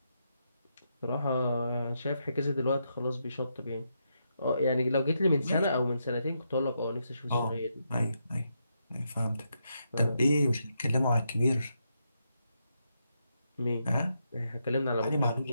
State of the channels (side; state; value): both; inverted; correlation -0.81